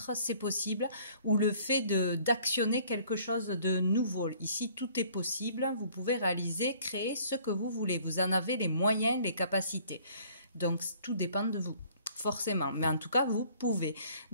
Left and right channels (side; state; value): both; inverted; correlation -0.56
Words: c'est possible. Ou le fait d'actionner quelque chose de nouveau. Ici, tout est possible. Vous pouvez réaliser, créer ce que vous voulez. Vous en avez les moyens, les capacités. Donc, tout dépend de vous. Forcément, mais en tout cas, vous pouvez.